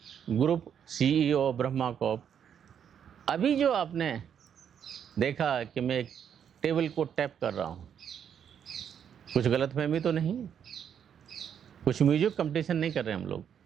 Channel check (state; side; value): quieter; left; 8.4 dB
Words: group CEO Brahma corp. अभी जो आपने देखा कि मैं एक टेबल को टैप कर रहा हूँ, कुछ गलतफहमी तो नहीं, कुछ म्यूजिक कंपटीशन नहीं कर रहे हम